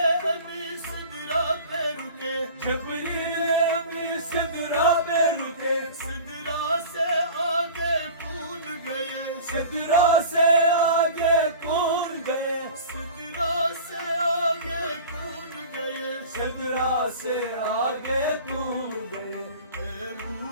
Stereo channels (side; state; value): both; inverted; correlation -0.39